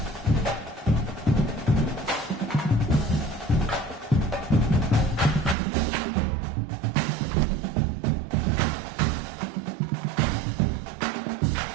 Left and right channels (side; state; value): left; drops out; at 5.6 s